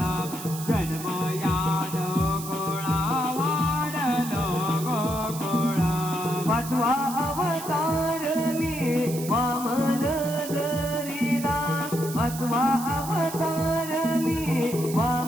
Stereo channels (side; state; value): right; noise; hiss, 11 dB below the sound